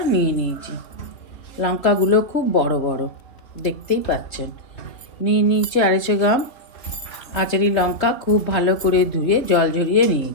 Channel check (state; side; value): late; right; 3.3 ms